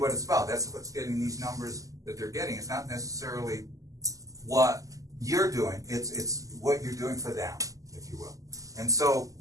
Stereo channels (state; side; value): late; left; 0.17 ms